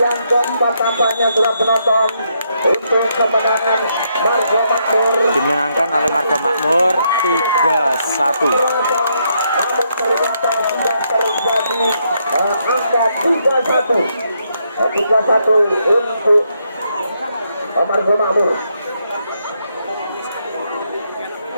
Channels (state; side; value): inverted; both; correlation -0.77